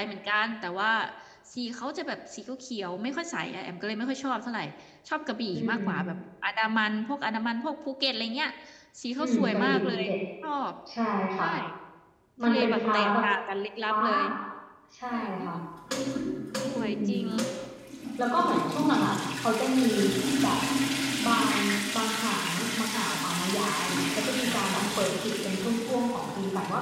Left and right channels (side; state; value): both; identical; correlation 1.00